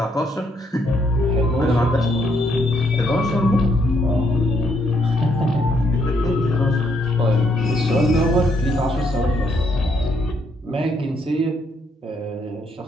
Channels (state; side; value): normal; both; correlation 0.73